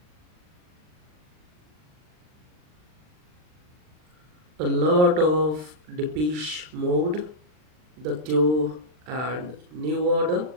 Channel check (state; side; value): late; left; 39 ms